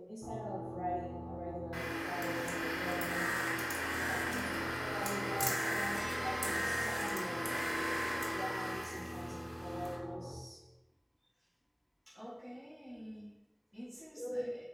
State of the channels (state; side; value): identical; both; correlation 1.00